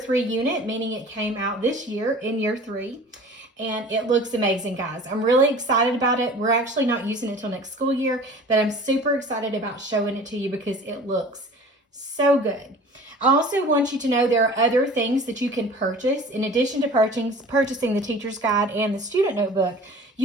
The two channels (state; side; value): normal; both; correlation 0.43